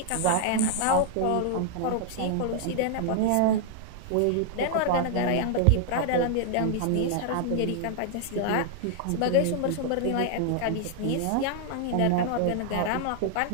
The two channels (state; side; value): different; both; correlation 0.00